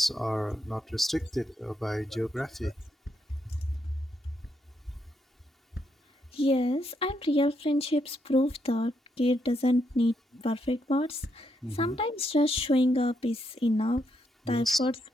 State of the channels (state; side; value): normal; both; correlation 0.79